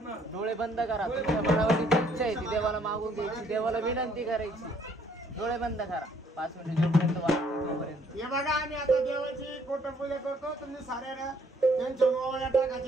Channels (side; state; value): both; normal; correlation 0.64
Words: डोळे बंद करा. तुमच्या मनावरची इच्छा आहे ती देवाला मागून घ्यायची, देवाला विनंती करायची. डोळे बंद करा 5 मिनिट जोपर्यंत वाटपर्यंत. हे बघा आम्ही आता देवाची कोटपूजा करतो. तुम्ही साऱ्या त्यांच्या ओवाळ्या